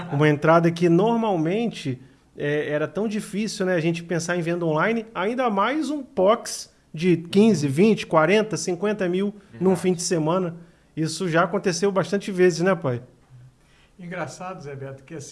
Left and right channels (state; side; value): identical; both; correlation 1.00